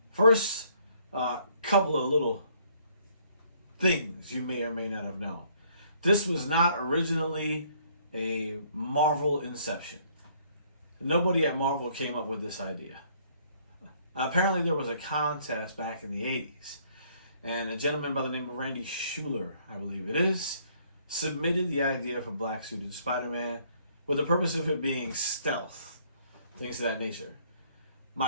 First, couple of little things you may or may not have known. This was not originally a Marvel inception. Nobody at Marvel came up with this idea. Apparently there was a contest back in the 80s, and a gentleman by the name of Randy Schueller, I believe it is, submitted the idea for black suited Spider-Man with the purpose of it being stealth, things of that nature.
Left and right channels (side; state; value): both; inverted; correlation -0.64